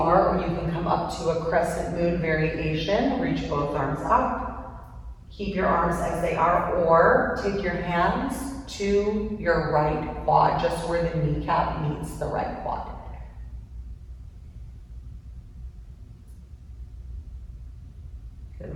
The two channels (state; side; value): identical; both; correlation 1.00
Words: or you can come up to a crescent moon variation. Reach both arms up. Keep your arms as they are, or take your hands to your right quad, just where the kneecap meets the right quad.